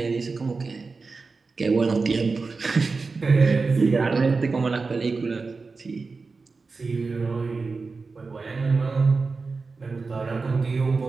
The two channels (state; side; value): quieter; left; 4.2 dB